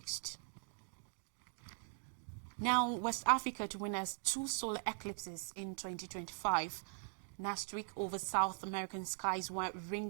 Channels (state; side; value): silent; left; 50 dB below the other